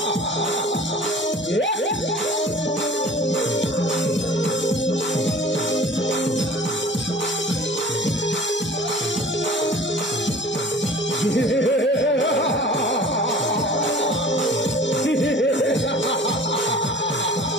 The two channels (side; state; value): both; normal; correlation 0.45